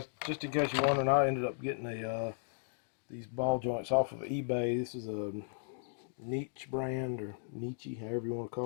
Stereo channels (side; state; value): right; silent; digital silence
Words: just in case you're wondering, I ended up getting these ball joints off of eBay. This is a Niche brand, or Nietzsche, however you want to